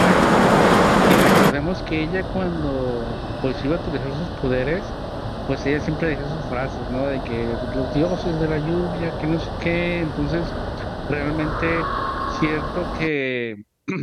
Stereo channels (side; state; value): both; identical; correlation 1.00